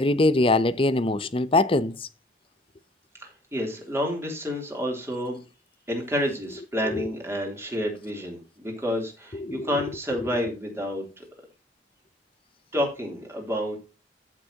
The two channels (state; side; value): normal; both; correlation 0.56